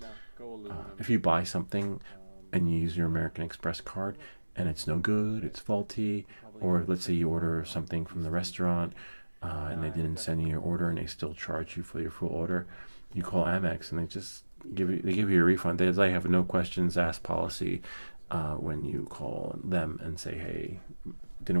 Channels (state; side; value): inverted; both; correlation -1.00